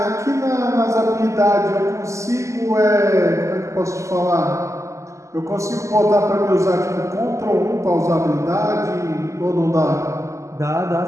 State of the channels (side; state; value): left; late; 0.15 ms